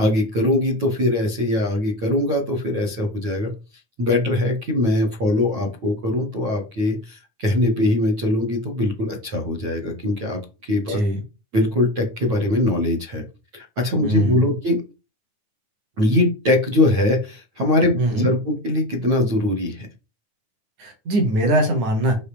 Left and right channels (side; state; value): left; late; 9.2 ms